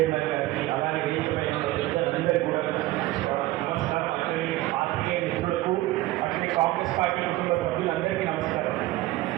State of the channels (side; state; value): left; quieter; 17.4 dB